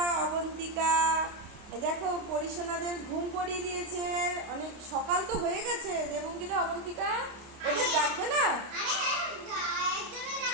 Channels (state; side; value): late; left; 29 ms